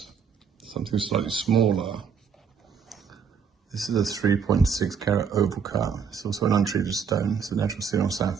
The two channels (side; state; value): left; quieter; 6.6 dB